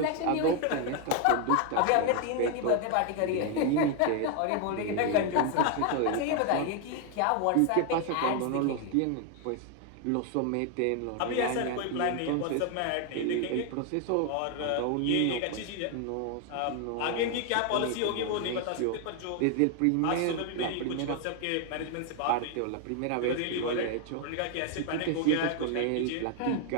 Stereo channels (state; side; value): different; both; correlation 0.01